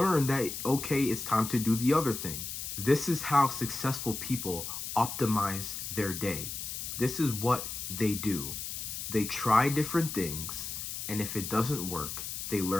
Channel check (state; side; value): noise; left; hiss, 6 dB below the sound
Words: that, okay, it's time to do the other thing. This is how successful people optimize their day. This is what they do. They try different things, and if it doesn't work, they